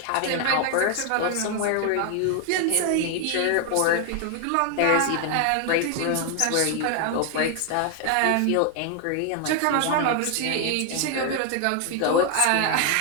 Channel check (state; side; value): different; both; correlation 0.00